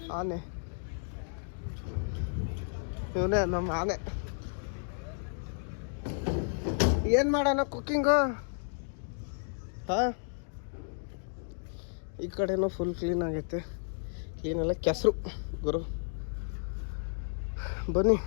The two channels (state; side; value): silent; right; digital silence